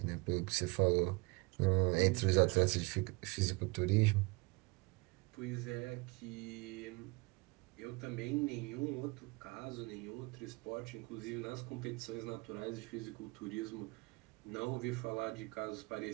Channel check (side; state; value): left; quieter; 26.6 dB